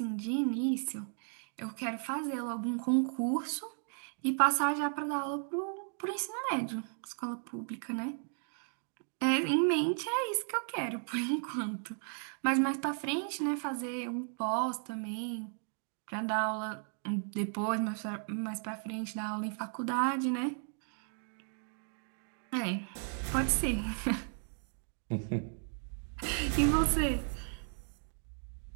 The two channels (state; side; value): silent; left; 54 dB below the other